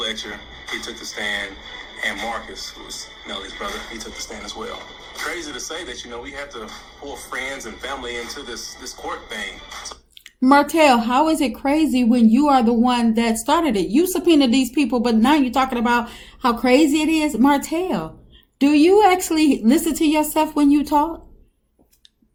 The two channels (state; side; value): identical; both; correlation 1.00